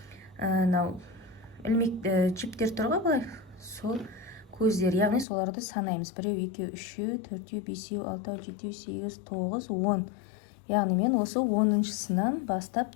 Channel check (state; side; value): drops out; right; at 5.2 s